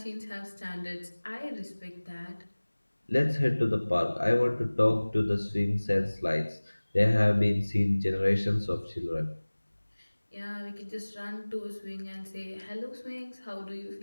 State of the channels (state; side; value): inverted; both; correlation -1.00